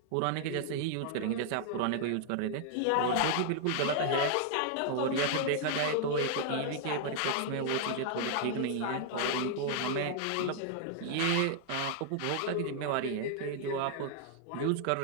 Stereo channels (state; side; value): different; both; correlation 0.00